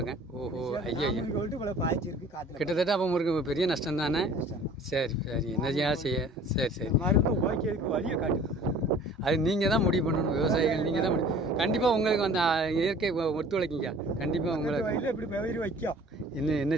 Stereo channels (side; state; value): both; normal; correlation 0.48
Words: ஓஹோ, ஐயோ, கிட்டத்தட்ட அப்போ உங்களுக்கு பெரிய நஷ்டம் தானே? சரி சரி, என்னையா செய்ய? சரி மருந்து ஓகேக்கு வழியை காட்டுது. அது நீங்கள் தான் முடிவு பண்ணணும். விவசாயிகள் நீங்கள் தான் கண்டிப்பாக உங்களுக்கு அந்த இயற்கை ஒத்துழைக்கிங்க. கண்டிப்பாக உங்களுக்கு இப்படி வைக்கும். என்ன